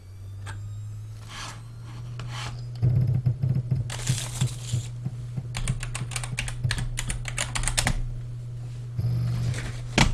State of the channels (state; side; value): identical; both; correlation 1.00